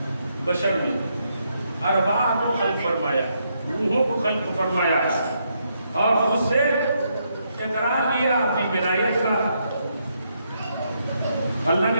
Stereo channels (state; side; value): inverted; both; correlation -0.77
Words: بشر میں ارواح کو خلق فرمایا, روحوں کو خلق فرمایا, اور اس سے اقرار لیا اپنی ولایت کا. اللہ نے